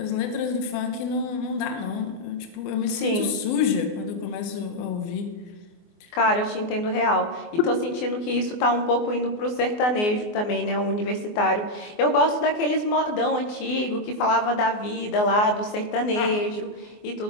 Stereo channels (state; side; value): late; right; 24 ms